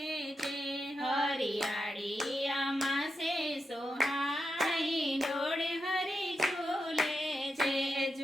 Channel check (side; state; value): both; normal; correlation 0.87